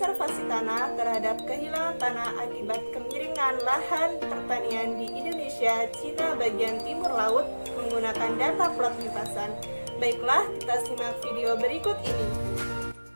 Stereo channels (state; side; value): inverted; both; correlation -1.00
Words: Tanah terhadap Kehilangan Tanah Akibat Kemiringan Lahan Pertanian di Indonesia, Cina bagian timur laut menggunakan data plot limpasan. Baiklah, kita simak video berikut ini.